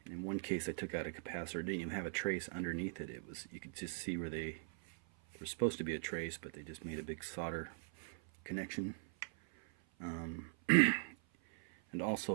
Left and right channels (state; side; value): silent; left; 50 dB below the other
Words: In one case I took out a capacitor, it didn't even have a trace underneath it. You could just see where they were supposed to be a trace, but they just made a big solder connection. And